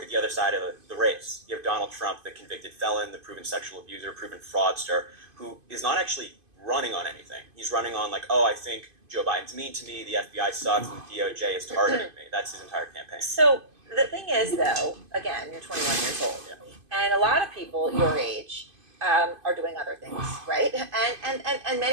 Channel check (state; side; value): late; left; 2.5 ms